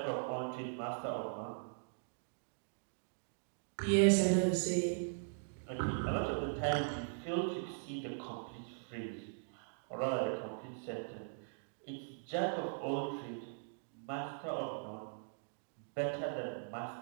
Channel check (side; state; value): left; silent; digital silence